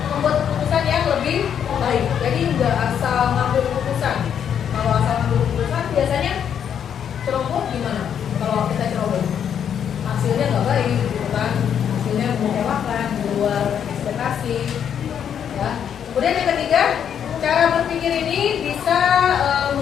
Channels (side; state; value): right; quieter; 8.5 dB